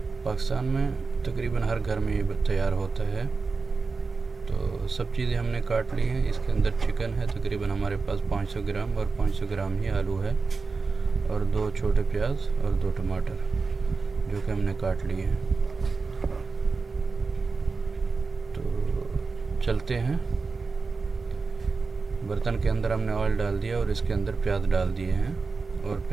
पाकिस्तान में तकरीबन हर घर में ये तैयार होता है। तो सब चीज़ें हमने काट ली हैं। इसके अंदर चिकन है, तकरीबन हमारे पास 500 ग्राम, और 500 ग्राम ही आलू है, और 2 छोटे प्याज और 2 टमाटर, जो कि हमने काट लिए हैं। तो चलते हैं। बर्तन के अंदर हमने ऑयल डाल दिया और इसके अंदर प्याज डाल दिए हैं, और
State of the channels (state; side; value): quieter; left; 4.4 dB